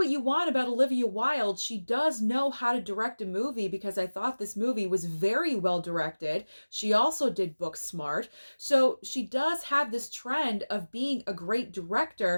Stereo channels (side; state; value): both; inverted; correlation -1.00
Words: you want about Olivia Wilde, she does know how to direct a movie, because I thought this movie was very well directed. She also did Booksmart. So she does have this trend of being a great